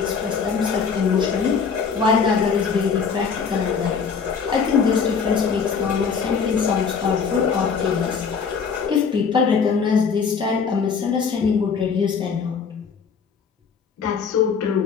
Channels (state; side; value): quieter; right; 5.9 dB